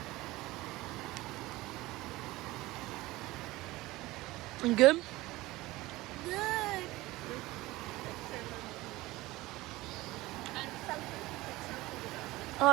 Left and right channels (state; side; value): quieter; left; 19.1 dB